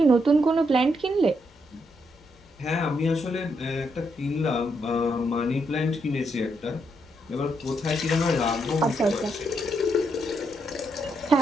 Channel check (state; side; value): normal; both; correlation 0.78